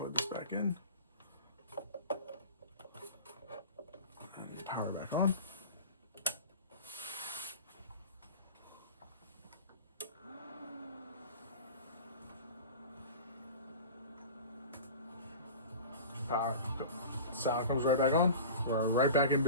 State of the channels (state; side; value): inverted; both; correlation -0.35